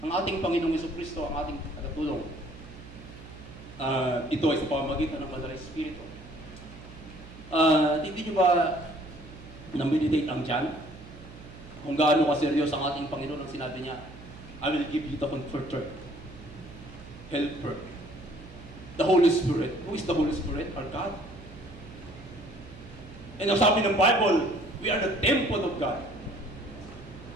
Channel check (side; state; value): right; noise; hum, 17 dB below the sound